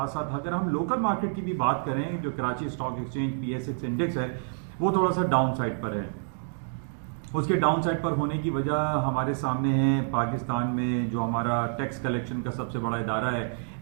साथ अगर हम लोकल मार्केट की भी बात करें, जो Karachi stock exchange PSX index है वो थोड़ा सा डाउन साइड पर है। उसके डाउन साइड पर होने की वजह हमारे सामने है पाकिस्तान में जो हमारा टैक्स कलेक्शन का सबसे बड़ा इदारा है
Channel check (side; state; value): left; silent; digital silence